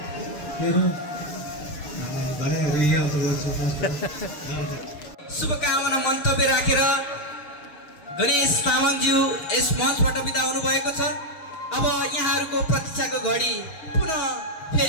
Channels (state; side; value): late; right; 6.9 ms